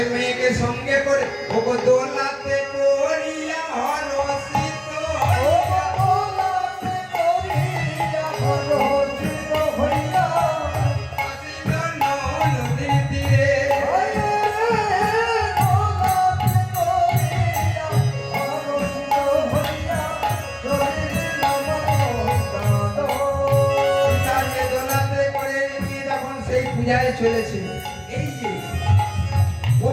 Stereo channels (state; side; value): identical; both; correlation 1.00